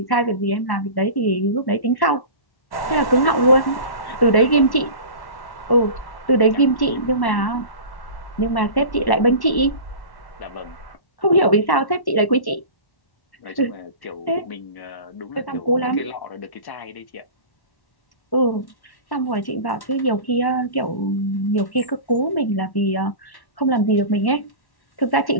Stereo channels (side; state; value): right; late; 1.1 ms